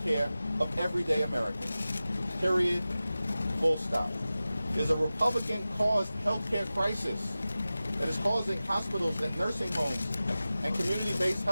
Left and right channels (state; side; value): inverted; both; correlation -0.95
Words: care of everyday Americans. Period. Full stop. There's a Republican-caused healthcare crisis that is causing hospitals and nursing homes and community-based